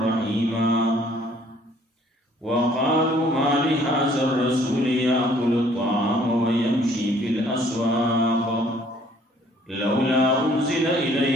رحيما. وقالوا ما لهذا الرسول يأكل الطعام ويمشي في الأسواق لولا أنزل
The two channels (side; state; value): both; normal; correlation 0.60